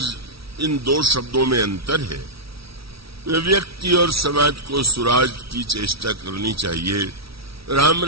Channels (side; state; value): left; late; 0.76 ms